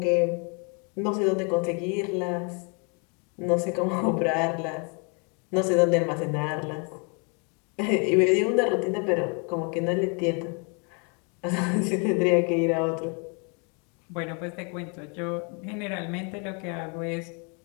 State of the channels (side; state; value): right; quieter; 35.4 dB